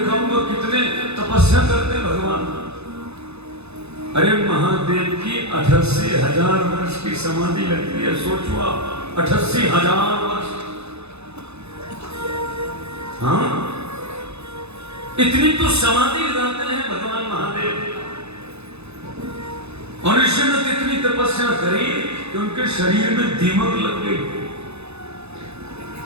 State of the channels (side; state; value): left; late; 0.80 ms